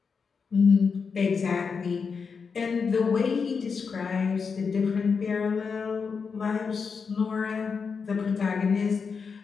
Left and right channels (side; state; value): right; quieter; 5.5 dB